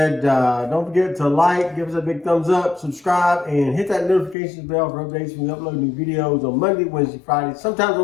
don't forget to like, give us a big thumbs up, subscribe, and hit that notifications bell for updates when we upload new videos on Monday, Wednesday, Friday, sometimes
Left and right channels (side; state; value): right; drops out; at 4.4 s